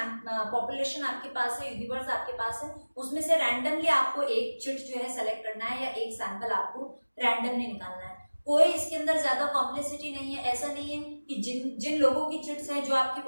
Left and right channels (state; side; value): inverted; both; correlation -1.00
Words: पॉपुलेशन आपके पास है, यूनिवर्स आपके पास है, उसमें से रैंडमली आपको एक चिट जो है सेलेक्ट करना है या एक सैंपल आपको रैंडमली निकालना है। कोई इसके अंदर ज्यादा कॉम्प्लेक्सिटी नहीं है। ऐसा नहीं है कि जिन लोगों की चिट्स हैं, जो आपकी